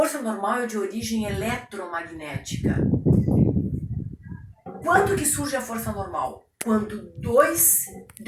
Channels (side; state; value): both; identical; correlation 1.00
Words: normal é de origem eletromagnética. Quando que surge a força normal? Quando duas